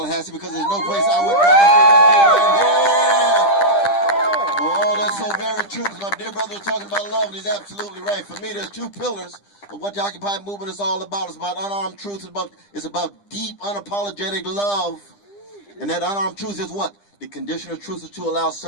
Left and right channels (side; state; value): right; late; 10 ms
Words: because there's no place I would rather be. Oh, that's so very true, because my dear brother was talking about love, and he's absolutely right. For me, there's two pillars of what the Occupy movement is all about. It's about unarmed truth. It's about deep, unapologetic love. And that unarmed truth is what? The condition of truth is to allow